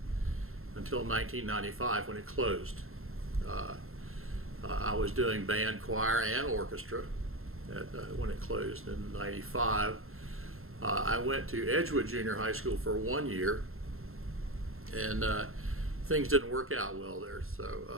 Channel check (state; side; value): late; left; 0.62 ms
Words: until 1995 when it closed. I was doing band, choir, and orchestra when it closed in 95. I went to Edgewood Junior High School for 1 year, and things didn't work out well there,